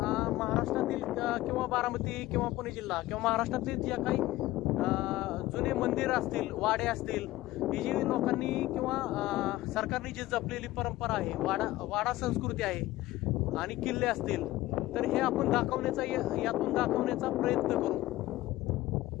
महाराष्ट्रातील किंवा बारामती किंवा पुणे जिल्हा किंवा महाराष्ट्रातील ज्या काही जुने मंदिर असतील, वाडे असतील, ही जी लोकांनी किंवा सरकारने जी जपलेली परंपरा आहे, वाडा संस्कृती आहे आणि किल्ले असतील, तर हे आपण यातून दाखवण्याचा प्रयत्न करू.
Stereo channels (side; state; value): right; quieter; 16.9 dB